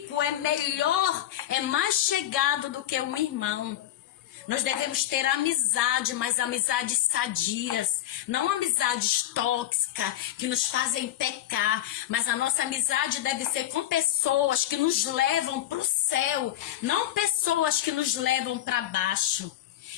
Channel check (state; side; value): quieter; right; 12.9 dB